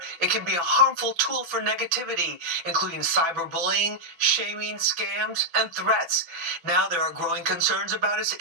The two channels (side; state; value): left; late; 5.9 ms